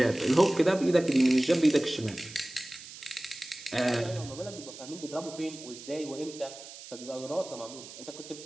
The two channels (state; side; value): noise; right; hiss, 15 dB below the sound